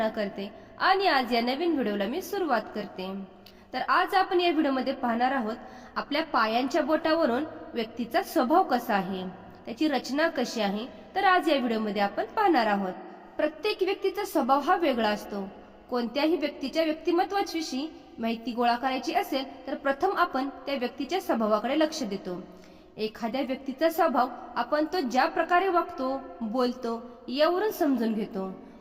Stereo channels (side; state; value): both; identical; correlation 1.00